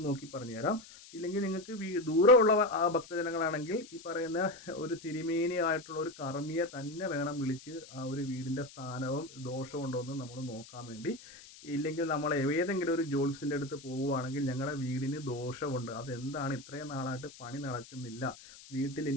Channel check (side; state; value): left; noise; hiss, 19 dB below the sound